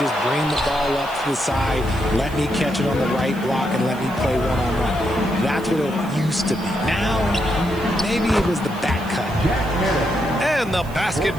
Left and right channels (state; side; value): noise; right; hiss, 21 dB below the sound